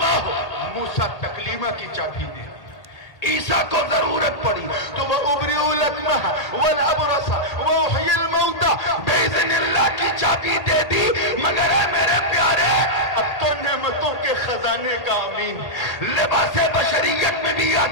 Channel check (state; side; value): late; right; 1.8 ms